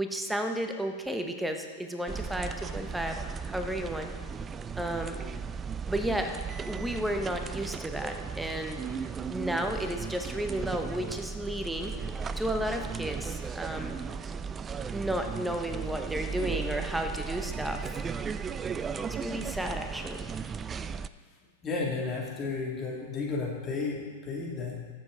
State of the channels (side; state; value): both; normal; correlation 0.66